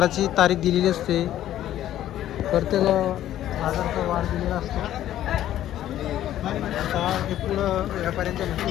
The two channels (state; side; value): quieter; right; 12.5 dB